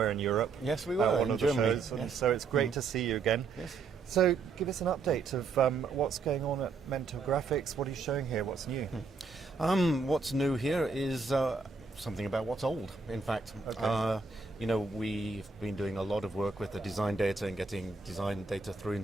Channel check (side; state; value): left; quieter; 4.5 dB